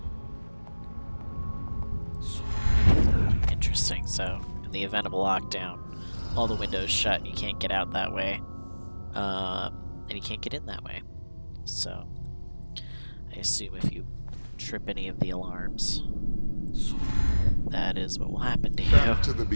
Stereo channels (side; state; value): both; inverted; correlation -1.00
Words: Interesting. So, in the event of a lockdown, all the windows shut, and you can't get out that way. And you can't get in that way. So, I assume if you trip any of the alarms, that is what will happen to you. Back to the